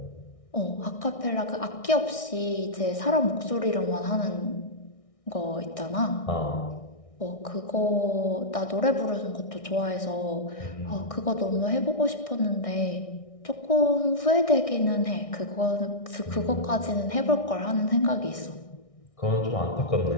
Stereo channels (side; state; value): right; late; 1.6 ms